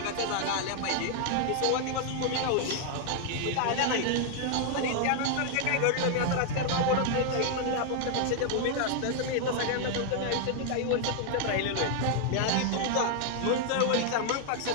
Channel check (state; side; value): different; both; correlation 0.00